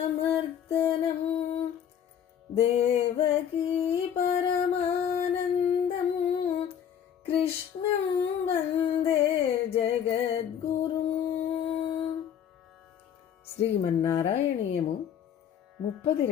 దేవకీ పరమానందం కృష్ణం వందే జగద్గురుం. శ్రీమన్నారాయణీయము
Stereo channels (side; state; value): right; quieter; 8.9 dB